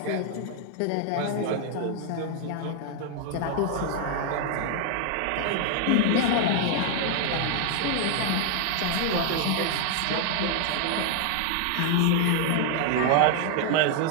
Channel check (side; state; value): both; different; correlation 0.00